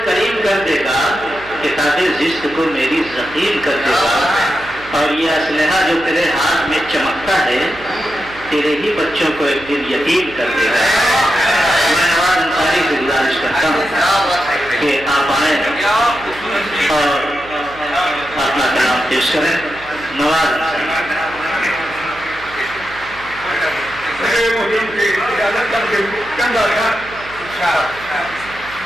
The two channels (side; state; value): right; noise; hum, 19 dB below the sound